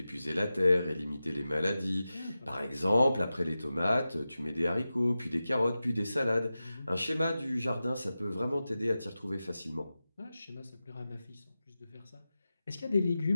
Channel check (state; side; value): inverted; both; correlation -0.94